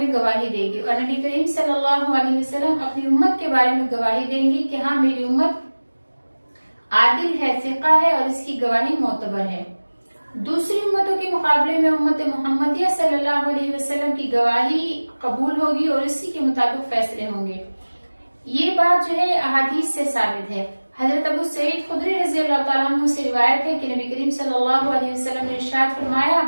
गवाही देगी और नबी करीम सल्लल्लाहु अलैहि वसल्लम अपनी उम्मत के बारे में गवाही देंगी कि हाँ मेरी उम्मत आदिल है, सिक़ा है और इसकी गवाही मोतबर है। दूसरी उम्मतों के मुकाबले में उम्मत मोहम्मदिया सल्लल्लाहु अलैहि वसल्लम की गवाही कबूल होगी और इसी के मुताबिक फैसले होंगे। ये बात जो है अहादीस से साबित है। हजरत अबू सईद खुदरी रज़ी अल्लाह तआला अन्हु से रिवायत है कि नबी करीम सल्लल्लाहु अलैहि वसल्लम ने इरशाद फरमाया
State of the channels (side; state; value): both; inverted; correlation -1.00